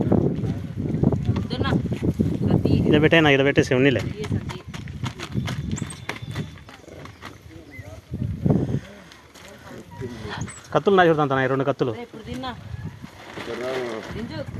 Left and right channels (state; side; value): identical; both; correlation 1.00